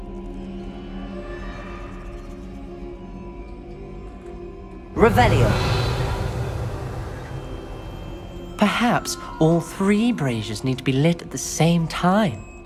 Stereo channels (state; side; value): identical; both; correlation 1.00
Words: Revelio! Perhaps all 3 braziers need to be lit at the same time.